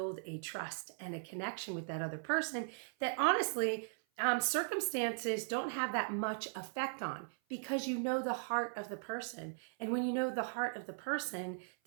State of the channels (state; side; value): silent; left; 52 dB below the other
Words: a trust and a connection with that other person that honestly, circumstances don't have that much effect on, because you know the heart of the person. And when you know the heart of the person,